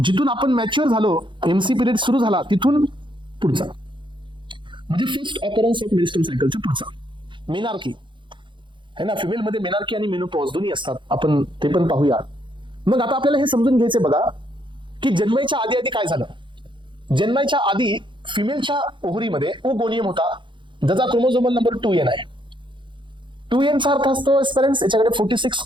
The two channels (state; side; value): late; left; 0.23 ms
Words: आपण मॅच्युअर झालो, एमसी पिरियड सुरू झाला तिथून पुढचा, म्हणजे फर्स्ट ऑकरन्स ऑफ मेरिस्टम सायकलचा पुढचा. मेनार्की है ना, फिमेल मध्ये मेनार्की आणि मेनोपॉज दोन्ही असतात, आपण ते पण पाहूया. मग आता आपल्याला हे समजून घ्यायचे बघा की जन्माच्या आधी आधी काय झालं. जन्माच्या आधी फिमेलच्या ओव्हरीमध्ये ओगोनियम होता, ज्याचा क्रोमोझोमल नंबर 2n आहे. 2n चा अर्थ असतो पेरेंट्स, याच्याकडे 46